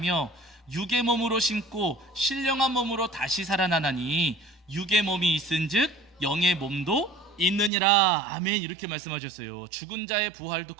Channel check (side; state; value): left; drops out; at 7.7 s